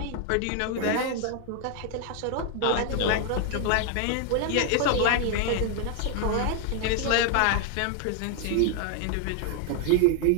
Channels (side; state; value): both; different; correlation 0.00